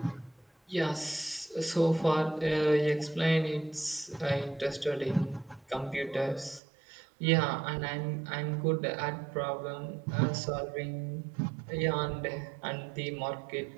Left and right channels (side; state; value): left; drops out; at 6.6 s